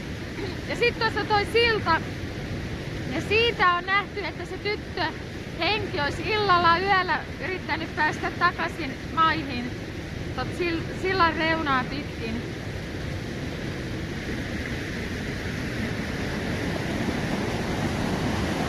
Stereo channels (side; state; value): both; identical; correlation 1.00